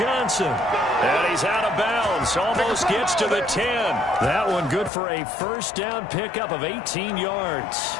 And he's out of bounds. Almost gets to the 10. That one good for a first down pickup of 18 yards.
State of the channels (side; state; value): right; drops out; at 4.9 s